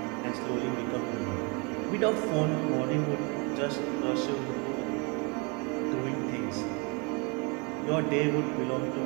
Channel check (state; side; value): quieter; left; 29.7 dB